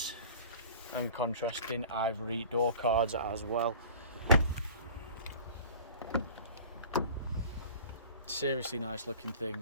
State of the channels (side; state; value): both; inverted; correlation -0.43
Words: and contrasting ivory door cards as well. Seriously nice looking